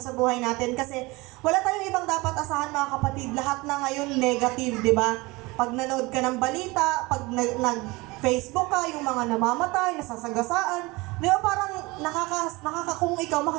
sa buhay natin. Kasi wala tayong ibang dapat asahan mga kapatid. Lahat na ngayon negative, di ba? Pag nanood ka ng balita, pag nag-Facebook ka, yung mga namamatay, nasasagasaan, di ba parang kung ikaw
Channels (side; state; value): left; quieter; 23.2 dB